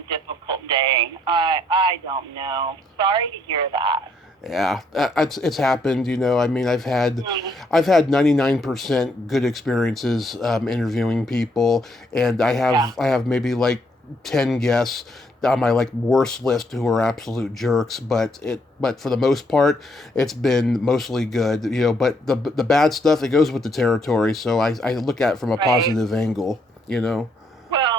difficult day. I don't know. Sorry to hear that. Yeah, it's happened. I mean, I've had 99% good experiences interviewing people, and I have maybe like 10 guests on my worst list who are absolute jerks, but for the most part it's been mostly good, but the bad stuff, it goes with the territory, so I look at it from a positive angle. Well,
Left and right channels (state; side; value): normal; both; correlation 0.71